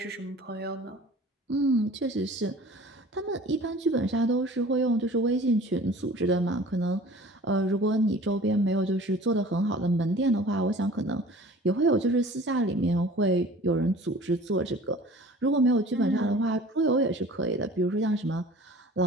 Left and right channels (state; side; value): normal; both; correlation 0.45